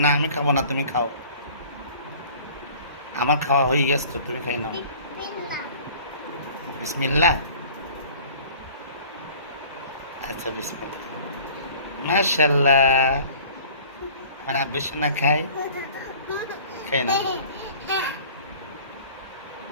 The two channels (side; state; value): both; inverted; correlation -0.47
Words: না আমি খাবো না, তুমি খাও। আমার খাওয়া হয়ে গেছে তো, তুমি খাই নাও। বিসমিল্লাহ। আচ্ছা বিসমিল্লাহ। মাশাল্লাহ, আমার আব্বু সোনা খাই, খাই না।